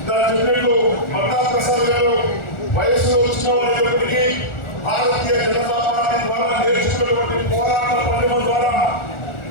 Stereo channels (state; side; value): late; right; 1.4 ms